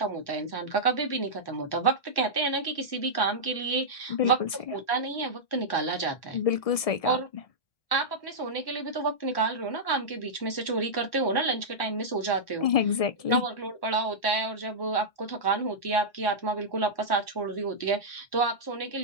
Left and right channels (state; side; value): late; right; 1.7 ms